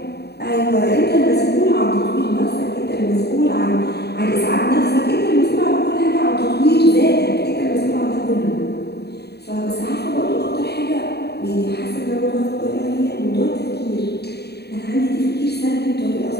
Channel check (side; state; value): right; late; 0.48 ms